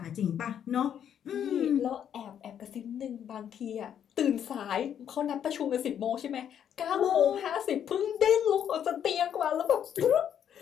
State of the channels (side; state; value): right; quieter; 9.2 dB